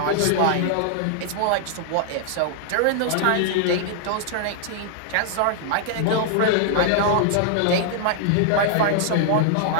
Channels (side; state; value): both; different; correlation -0.01